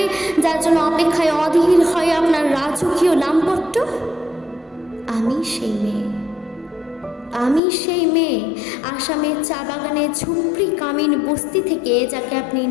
যার জন্য অপেক্ষায় অধীর হয় আপনার রাজকীয় লামপট্ট। আমি সেই মেয়ে। আমি সেই মেয়ে আসামের চা বাগানে ঝুপড়ি কামিন বস্তি থেকে যাকে আপনি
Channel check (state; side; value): drops out; right; at 7.6 s